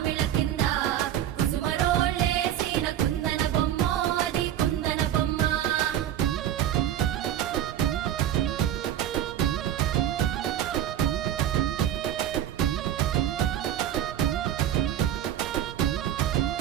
కింద కుసుమరోళ్ళేసిన కుందన బొమ్మ అది కుందన బొమ్మ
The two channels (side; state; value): left; quieter; 11.1 dB